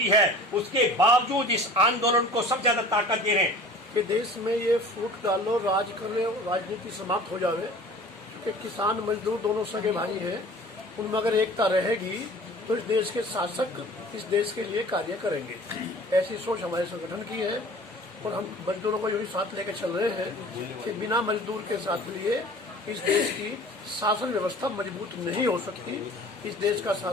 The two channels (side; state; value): both; normal; correlation 0.44